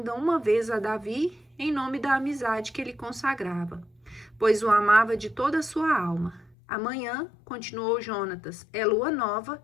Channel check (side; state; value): right; drops out; at 6.6 s